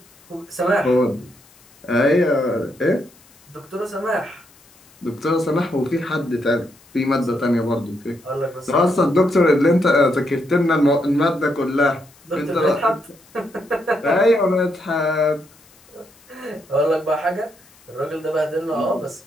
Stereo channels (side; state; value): left; noise; hiss, 28 dB below the sound